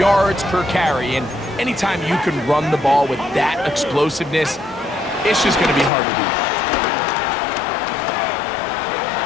per carry. And anytime you can run the ball with that explosiveness, it's just going to be hard to beat.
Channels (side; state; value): right; drops out; at 5.9 s